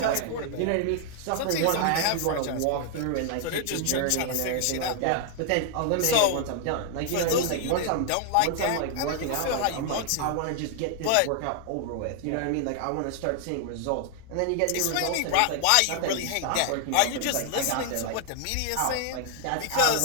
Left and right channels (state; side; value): different; both; correlation 0.00